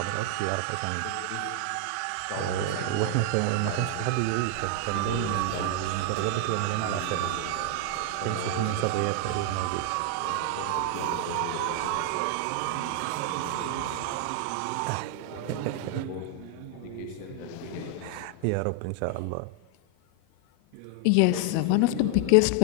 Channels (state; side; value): different; both; correlation 0.00